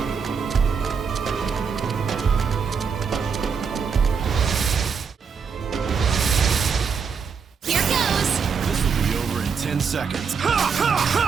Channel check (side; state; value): left; quieter; 6.1 dB